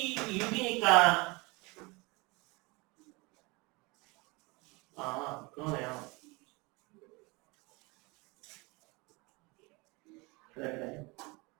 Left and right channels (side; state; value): left; quieter; 26.1 dB